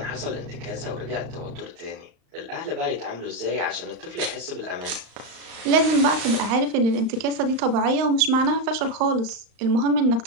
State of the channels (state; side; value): late; left; 35 ms